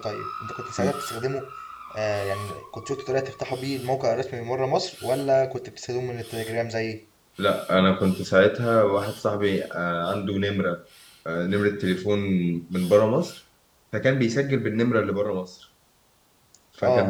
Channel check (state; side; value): identical; both; correlation 1.00